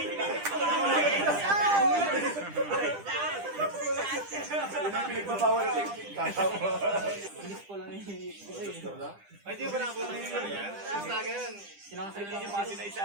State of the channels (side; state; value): left; late; 10 ms